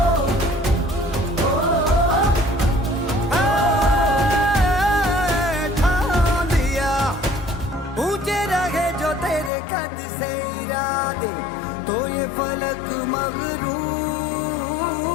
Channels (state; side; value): drops out; right; at 9.5 s